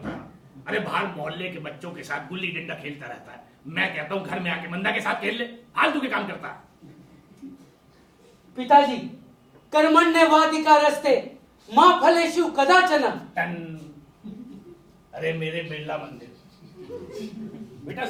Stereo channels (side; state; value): both; identical; correlation 1.00